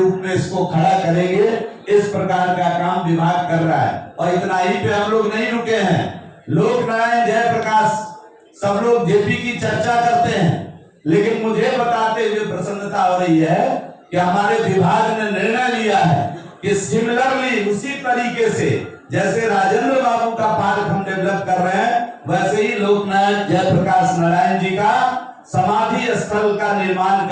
में इसको खड़ा करेंगे। इस प्रकार का काम विभाग कर रहा है। और इतना ही पे हम लोग नहीं रुके हैं। लोक नारायण जयप्रकाश सब लोग जेपी की चर्चा करते हैं, लेकिन मुझे बताते हुए प्रसन्नता हो रही है कि हमारे विभाग ने निर्णय लिया है कि सिमिलरली, उसी तरीके से जैसे राजेंद्र बाबू का पार्क हम डेवलप कर रहे हैं, वैसे ही लोकनायक जयप्रकाश नारायण जी का समाधि स्थल का निर्माण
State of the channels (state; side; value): identical; both; correlation 1.00